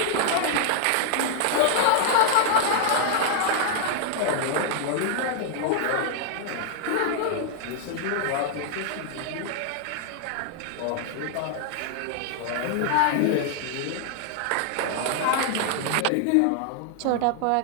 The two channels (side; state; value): both; different; correlation 0.00